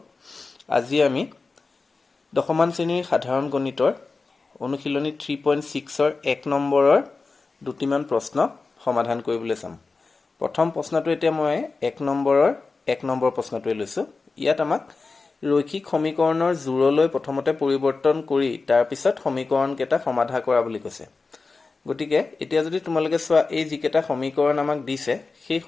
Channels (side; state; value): right; quieter; 4.1 dB